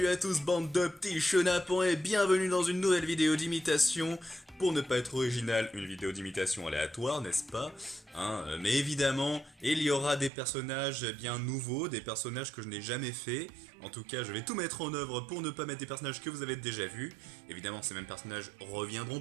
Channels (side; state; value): left; drops out; at 10.3 s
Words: à tous bande de petits chenapans et bienvenue dans une nouvelle vidéo d'imitation. Pour ne pas être original, une vidéo d'imitation aléatoire, n'est-ce pas mais évidemment, il y aura des personnages bien nouveaux, des personnages que je n'ai jamais fait. En tout cas, je vais tout mettre en œuvre pour ne pas mettre des personnages que vous avez déjà vus. Évidemment, ces mêmes personnages reviendront